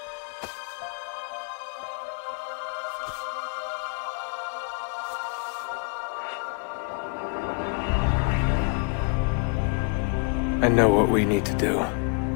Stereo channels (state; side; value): quieter; right; 37.1 dB